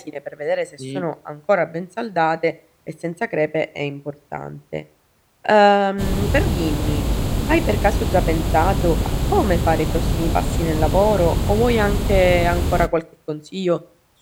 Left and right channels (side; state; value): both; identical; correlation 1.00